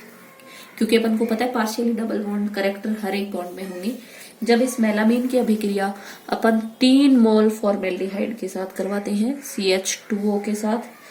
क्योंकि अपन को पता है पार्शियली डबल बॉन्ड करेक्टर हर एक बॉन्ड में होंगे। जब इस मेलामीन की अभिक्रिया अपन 3 मोल फॉर्मेल्डिहाइड के साथ करवाते हैं CH2O के साथ,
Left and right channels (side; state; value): both; identical; correlation 1.00